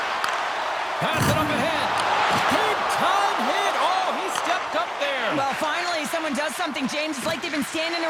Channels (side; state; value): both; identical; correlation 1.00